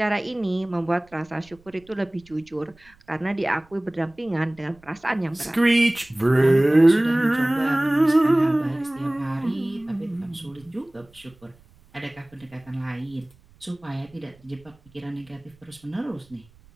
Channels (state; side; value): noise; right; rumble, 29 dB below the sound